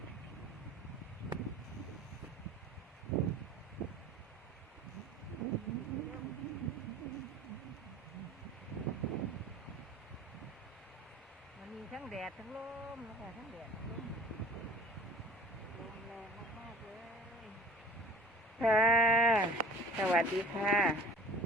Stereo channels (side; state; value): both; normal; correlation 0.44